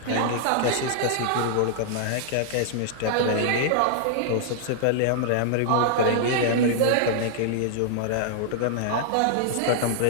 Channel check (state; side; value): different; both; correlation -0.01